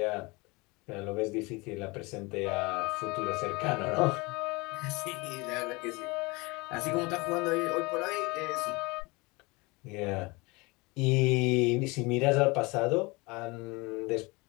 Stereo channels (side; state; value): right; quieter; 25.6 dB